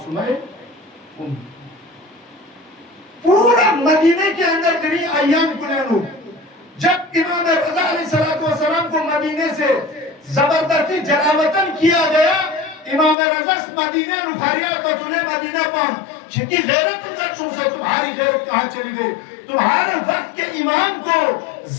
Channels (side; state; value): right; drops out; at 13.2 s